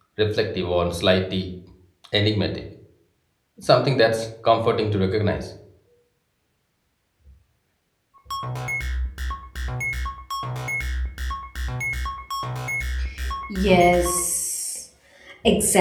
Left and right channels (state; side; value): identical; both; correlation 1.00